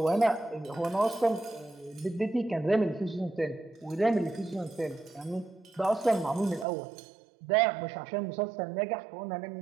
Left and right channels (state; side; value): drops out; left; at 6.7 s